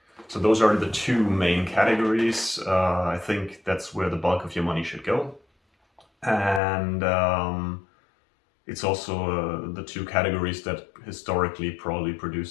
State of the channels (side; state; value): right; drops out; at 6.6 s